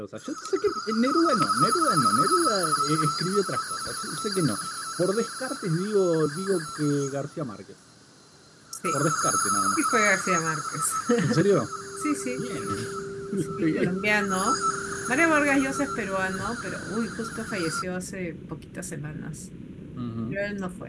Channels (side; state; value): both; identical; correlation 1.00